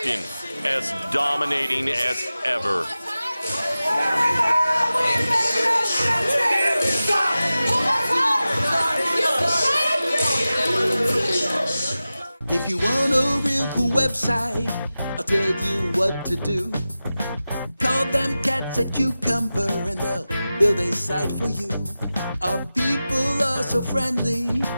as dominating as ever. If you want a real cool website website. I'll tell you what to do. Call them cats at Cucumber and they'll build a site for you. Our people are so friendly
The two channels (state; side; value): inverted; both; correlation -0.94